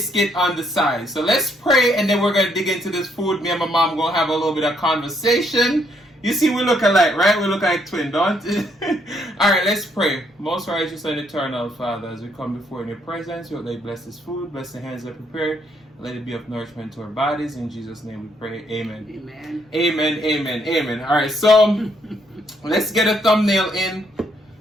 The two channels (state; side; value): normal; both; correlation 0.71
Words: on the side. So let's pray, and then we're going to dig into this food. Me and my mom going to have a little bit of conversation. You see, we look alike, right? We look like twins, don't we? All right, let's pray. Most righteous and eternal Father, as we come before in your presence, you let bless this food, bless the hands that prepare, let it be of nourishment to our bodies. In Jesus' name we pray. Amen. Amen. Amen, amen, amen. All right, so let's get a thumbnail in.